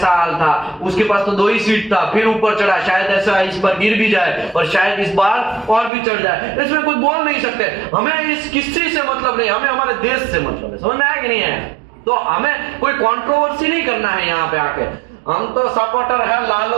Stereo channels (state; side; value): drops out; left; at 5.9 s